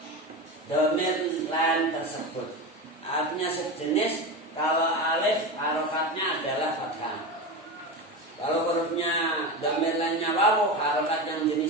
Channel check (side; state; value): both; normal; correlation 0.22